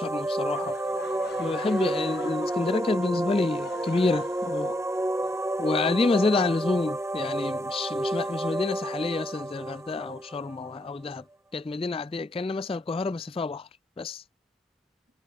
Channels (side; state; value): both; normal; correlation 0.77